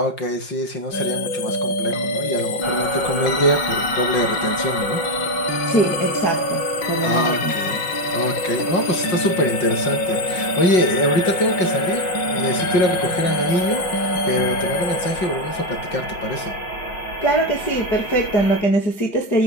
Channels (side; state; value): right; late; 5.5 ms